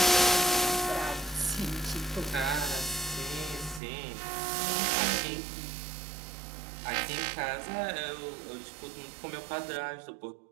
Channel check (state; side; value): drops out; left; at 3.8 s